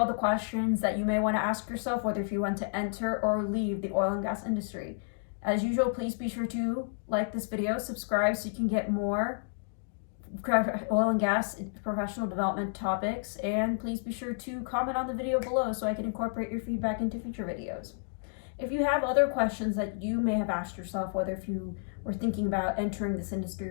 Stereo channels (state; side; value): silent; right; digital silence